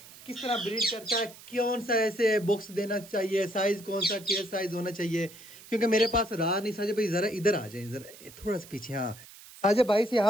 किस तरह ब्रीड करता है, कौन सा ऐसे बुक्स देना चाहिए, साइज कौन सा केयर साइज होना चाहिए। क्योंकि मेरे पास राह नहीं। साजिद भाई ज़रा इधर आ जाए, ज़रा थोड़ा सा पीछे। हाँ साजिद भाई से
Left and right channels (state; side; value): noise; right; hiss, 19 dB below the sound